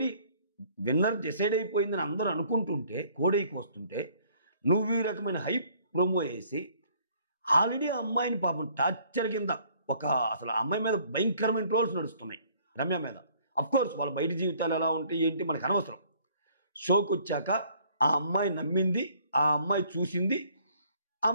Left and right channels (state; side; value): inverted; both; correlation -0.60